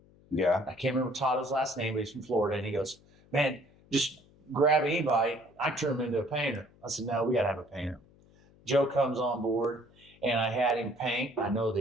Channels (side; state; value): left; noise; hum, 28 dB below the sound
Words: Yeah. I can't remember Totto's last name, but he's from Florida. And he goes, man, just grab anybody. I turn him into a painter. I said, no, we got to have a painter. Joe comes on board, and I had him paint. I know